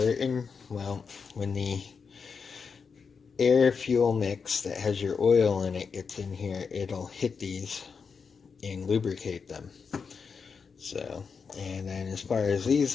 Well, when the air fuel mix that has your oil in it gets in here, it'll hit these and lubricate them. So, and then as far as these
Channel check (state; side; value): quieter; right; 5.6 dB